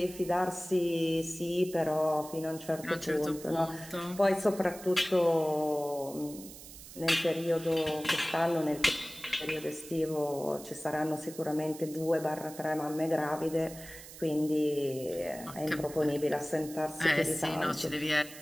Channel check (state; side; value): noise; right; hiss, 15 dB below the sound